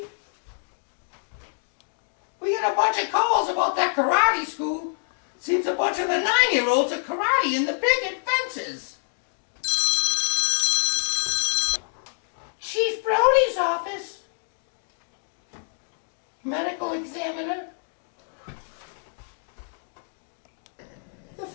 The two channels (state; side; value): silent; right; digital silence